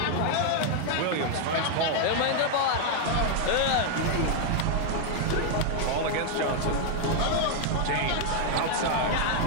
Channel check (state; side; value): different; both; correlation 0.00